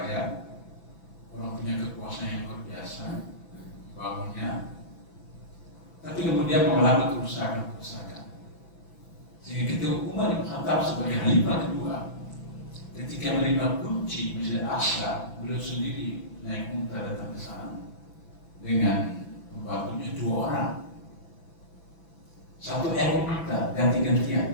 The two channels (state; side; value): late; right; 6.0 ms